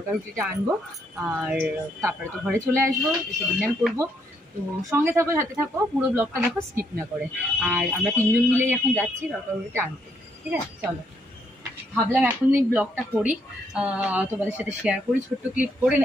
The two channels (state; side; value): normal; both; correlation 0.73